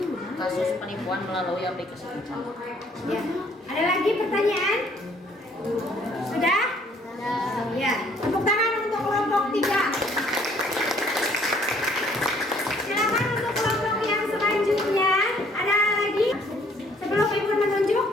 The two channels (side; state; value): both; normal; correlation 0.62